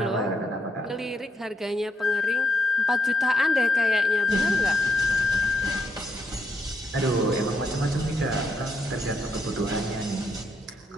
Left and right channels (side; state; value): both; normal; correlation 0.78